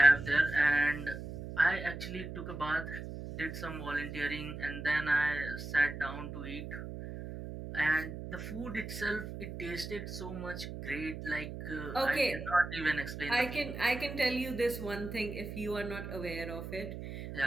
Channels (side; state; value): right; noise; hum, 8 dB below the sound